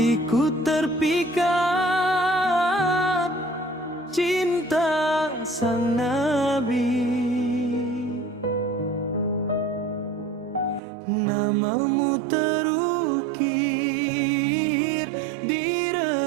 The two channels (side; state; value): left; drops out; at 10.8 s